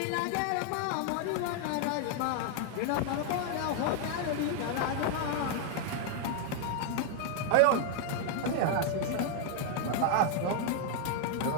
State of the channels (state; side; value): different; both; correlation 0.00